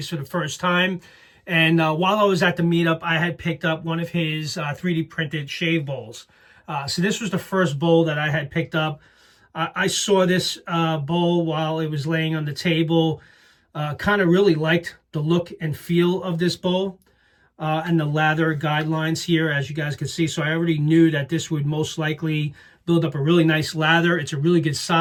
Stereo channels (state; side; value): identical; both; correlation 1.00